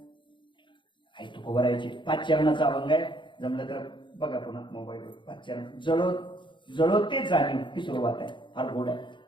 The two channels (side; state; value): right; late; 0.23 ms